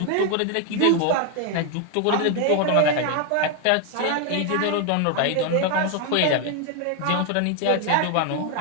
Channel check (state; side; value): different; both; correlation 0.01